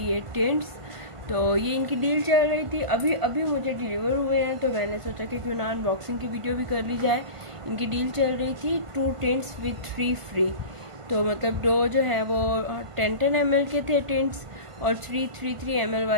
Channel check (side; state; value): left; late; 1.5 ms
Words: टेंट्स। तो ये इनकी डील चल रही थी, अभी मुझे डिलीवर हुए हैं, तो मैंने सोचा कि क्यों ना अनबॉक्सिंग की वीडियो भी कर ली जाए। इनकी डील चल रही थी 2 टेंट्स विद 3 फ्री। तो मतलब 2 जो है वो 10 ml के थे टेंट्स और 3 ml